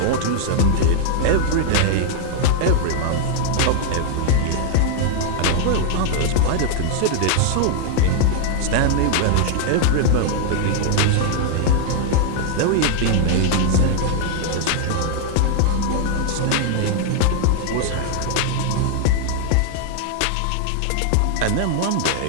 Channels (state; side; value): different; both; correlation 0.00